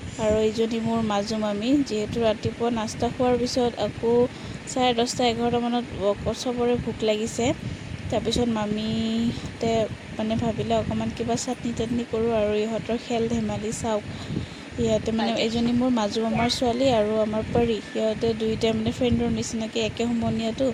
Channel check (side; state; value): both; identical; correlation 1.00